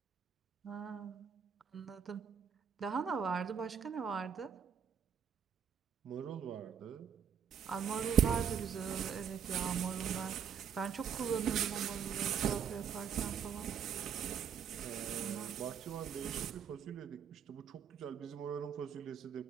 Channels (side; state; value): left; quieter; 7.7 dB